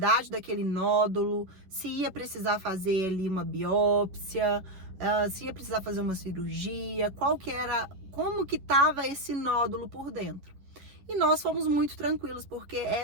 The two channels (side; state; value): left; late; 10 ms